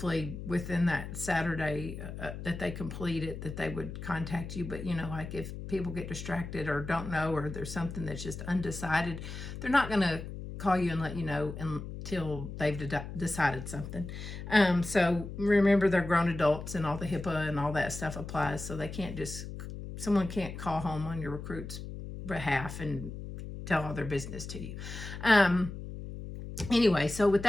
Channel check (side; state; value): left; noise; hum, 9 dB below the sound